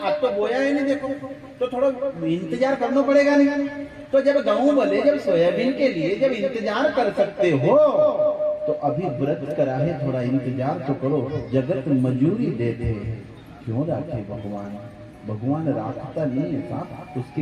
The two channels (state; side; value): identical; both; correlation 1.00